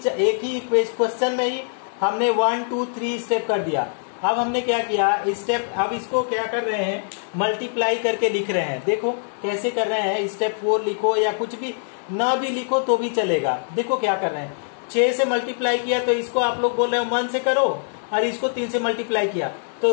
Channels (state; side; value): silent; right; 60 dB below the other